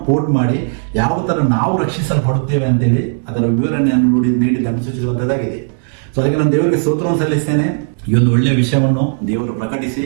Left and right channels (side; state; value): left; silent; digital silence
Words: ಕೋಟ್ ಮಾಡಿ ಯಾವ ತರ ನಾವು ರಕ್ಷಿಸಲ್ಪಡುತ್ತೇವೆ ಅಂತೇಳಿ ಅದರ ವಿವರಣೆಯನ್ನು ನೀಡಿದ್ದನ್ನು ಸೂಚಿಸುವಂತದ್ದಾಗಿದೆ. ಸೊ ಅದಕ್ಕೆ ನಾನು ದೇವರಿಗೆ ಸ್ತೋತ್ರವನ್ನು ಸಲ್ಲಿಸ್ತೇನೆ. ಈ ಒಂದು ಒಳ್ಳೆಯ ವಿಷಯವನ್ನು ದೇವರು ಪ್ರಕಟಿಸಿ